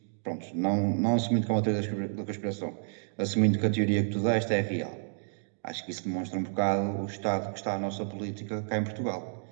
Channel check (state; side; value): silent; left; digital silence